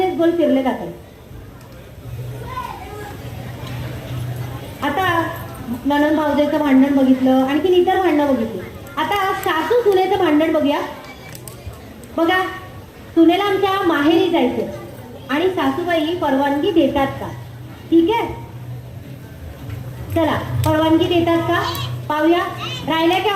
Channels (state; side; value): identical; both; correlation 1.00